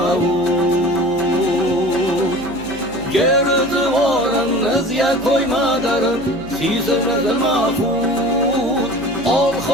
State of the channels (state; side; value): noise; left; hum, 18 dB below the sound